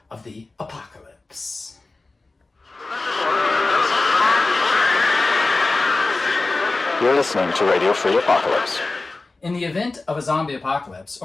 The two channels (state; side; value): quieter; right; 3.4 dB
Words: of the apocalypse. You're listening to Radio Free Apocalypse. In the event of a zombie apocalypse,